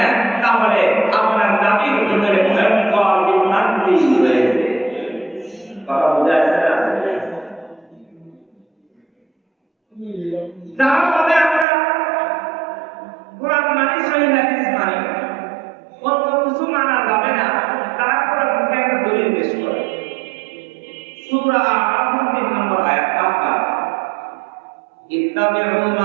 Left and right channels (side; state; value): left; drops out; at 11.7 s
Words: তাহলে আপনার দাবির ভিতরে ভয়ঙ্কর বিভ্রান্তি রয়েছে। কথা বোঝা যাচ্ছে না? যারা বলে আমরা কোরআন মানি, সহিহ হাদিস মানি, অন্য কিছু মানা যাবে না, তারা কোরআন থেকে একটা দলিল পেশ করে। সূরা আ'রাফ ৩ নম্বর আয়াত, ইত্তাবিউ